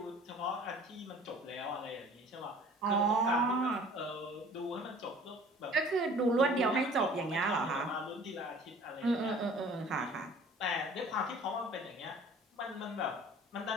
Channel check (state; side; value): normal; both; correlation 0.49